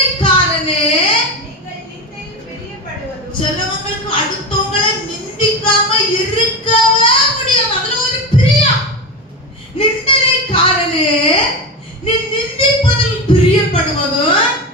சிலவங்களுக்கு அடுத்தவங்களை நிந்திக்காம இருக்கவே முடியாது. அதுல ஒரு பிரியம். நிந்தனைக்காரனே, நீ நிந்திப்பதில் பிரியப்படுவதும்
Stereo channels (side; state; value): both; normal; correlation 0.21